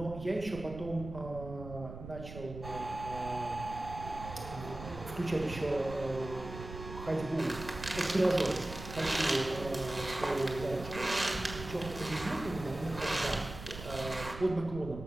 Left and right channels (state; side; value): noise; right; rumble, 11 dB below the sound